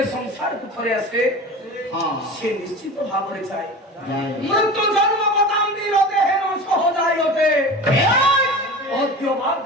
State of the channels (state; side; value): normal; both; correlation 0.33